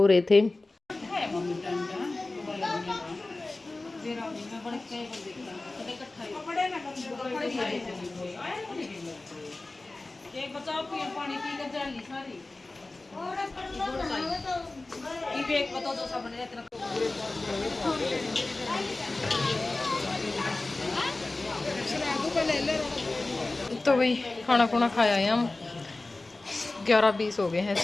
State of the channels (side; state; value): right; quieter; 3.1 dB